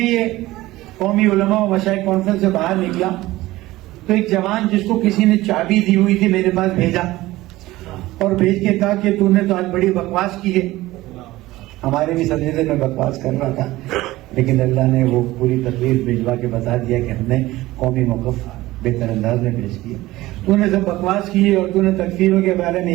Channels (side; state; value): left; quieter; 17.7 dB